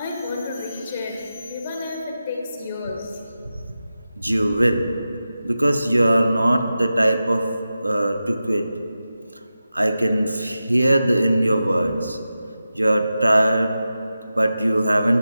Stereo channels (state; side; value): inverted; both; correlation -0.92